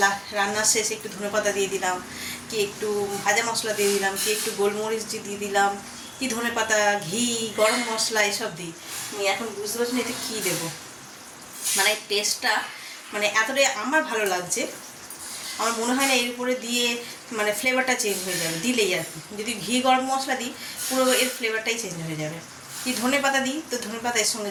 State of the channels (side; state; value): both; identical; correlation 1.00